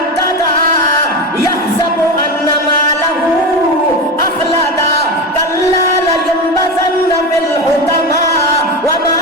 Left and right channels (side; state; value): both; normal; correlation 0.20